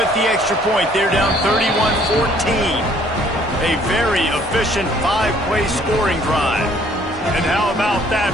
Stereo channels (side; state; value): both; normal; correlation 0.60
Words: the extra point, they're down 31-14. A very efficient 5-play scoring drive. And how about that